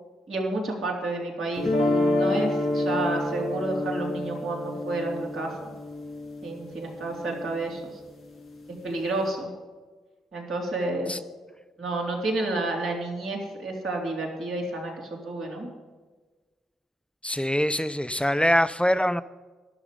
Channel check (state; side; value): normal; both; correlation 0.80